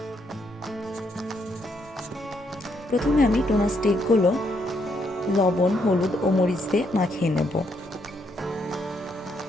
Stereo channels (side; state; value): both; normal; correlation 0.74